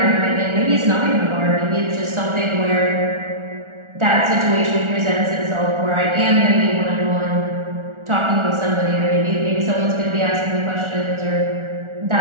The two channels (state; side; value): late; left; 1.4 ms